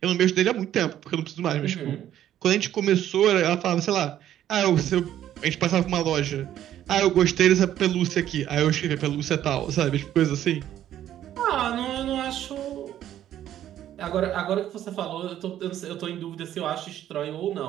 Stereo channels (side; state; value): left; quieter; 11.6 dB